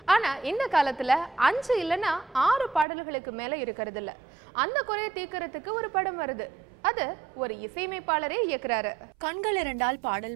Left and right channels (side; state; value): left; drops out; at 2.9 s